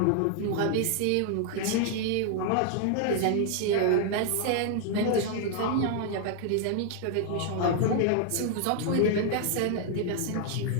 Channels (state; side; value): different; both; correlation 0.00